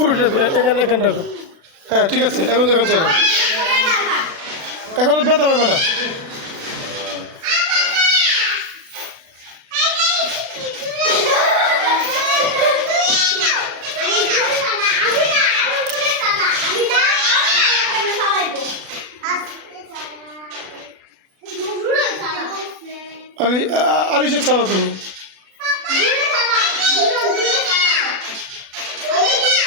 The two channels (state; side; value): late; left; 36 ms